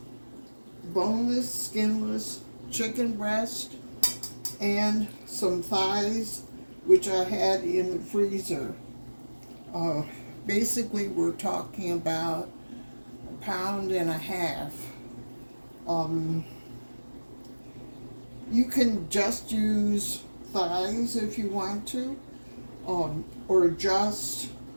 boneless, skinless chicken breast, and some thighs, which I had in the freezer. Basically, we're talking about 1.5 pounds. You can just use thighs if you want to, or just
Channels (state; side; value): inverted; both; correlation -1.00